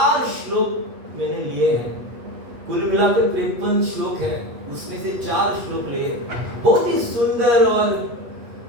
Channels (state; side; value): late; left; 8.2 ms